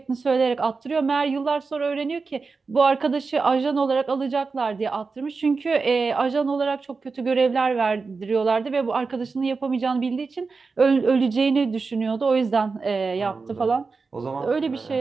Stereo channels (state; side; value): quieter; left; 4.4 dB